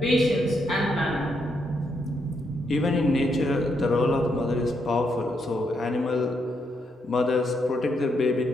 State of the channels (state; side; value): normal; both; correlation 0.78